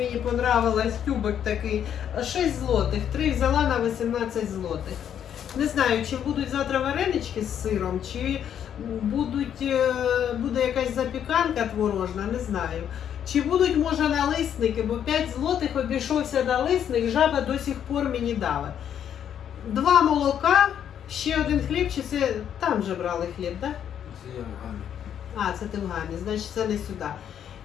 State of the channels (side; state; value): right; quieter; 9.3 dB